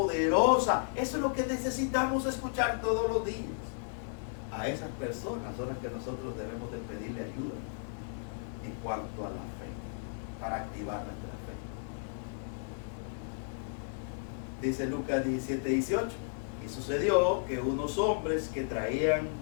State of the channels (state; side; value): silent; right; 55 dB below the other